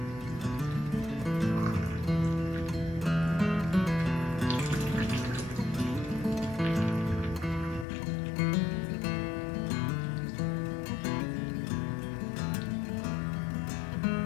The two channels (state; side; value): drops out; right; at 7.9 s